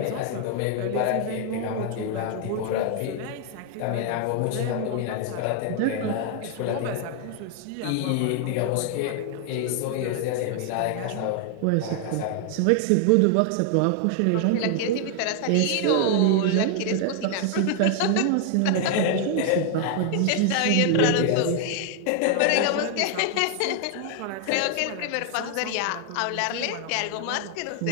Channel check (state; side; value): different; both; correlation 0.00